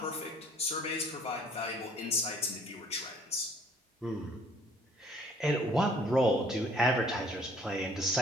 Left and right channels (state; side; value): normal; both; correlation 0.57